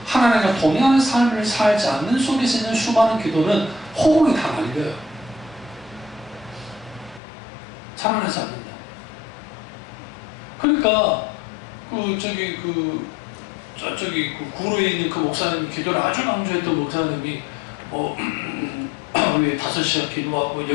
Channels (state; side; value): drops out; right; at 7.2 s